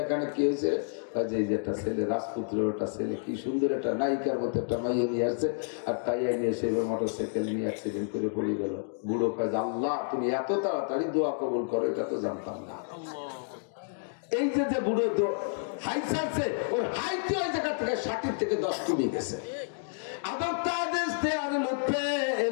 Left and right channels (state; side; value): silent; right; digital silence